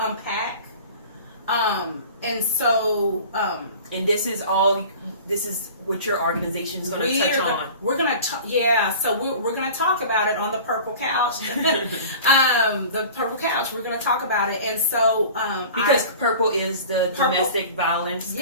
and so and this is what your organization is going to touch on. We're going to so we're going to talk about it on the Purple Couch. The Purple Couch, we're going to talk about it. And so because purple is the domestic violence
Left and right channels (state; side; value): inverted; both; correlation -0.41